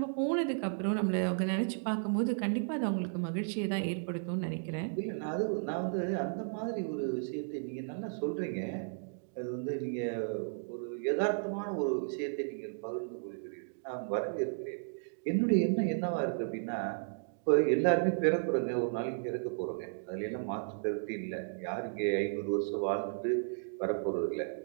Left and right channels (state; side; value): silent; left; digital silence